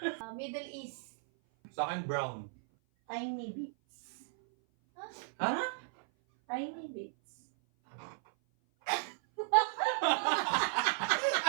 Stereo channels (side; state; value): left; silent; 54 dB below the other